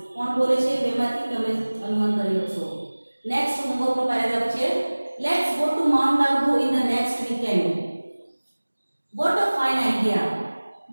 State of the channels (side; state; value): both; inverted; correlation -1.00